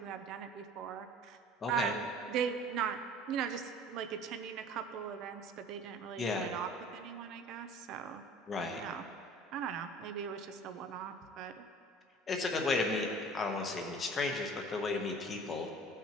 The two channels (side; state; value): both; normal; correlation 0.45